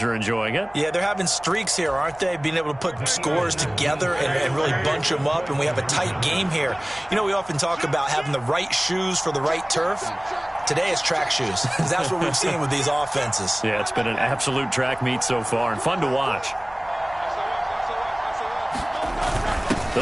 are enjoying it. Yeah, they're having streaks here, aren't they? Being able to put scores together and really bunch them up, and we have a tight game here. You know, we often talk about having the right shoes for the right turf. Today it's track shoes. That's what we've seen with these offenses. Yeah, it's been an absolute track meet so far and fun to watch.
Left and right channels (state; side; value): noise; right; hum, 24 dB below the sound